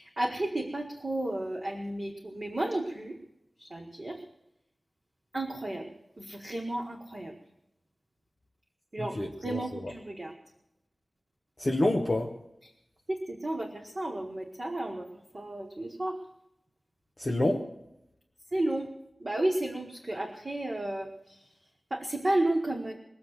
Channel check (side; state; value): both; normal; correlation 0.96